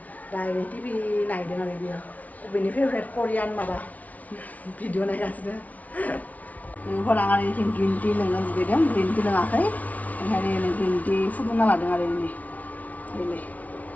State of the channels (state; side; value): late; right; 0.072 ms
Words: दा टिभि नायदों आरो बियो बेनि फेभरेट करियान माबा भिडिअ नायगासिनो लोगोफोर आं आरो इथिं ग्रिन टि लोंनो लुगैदों ग्रिन टि लोङाखै ओंखायनो ग्रिन टि फुदुंना लादों आरो बेलाय